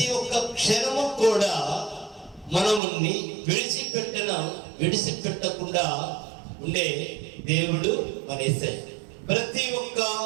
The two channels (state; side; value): drops out; left; at 2.8 s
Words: ఒక్క క్షణము కూడా మనముని విడిచిపెట్టకుండా ఉండే దేవుడు మన యేసయ్య. ప్రతి